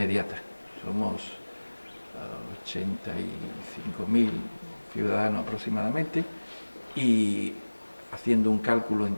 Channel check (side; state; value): both; inverted; correlation -1.00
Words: Somos 85.000 ciudadanos aproximadamente, y haciendo un cálculo